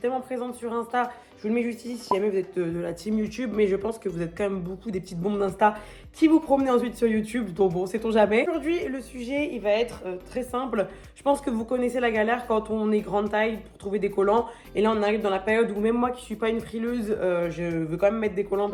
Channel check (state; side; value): identical; both; correlation 1.00